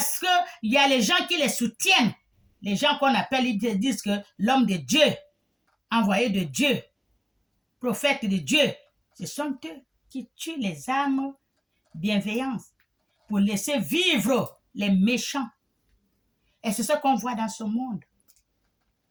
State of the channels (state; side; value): identical; both; correlation 1.00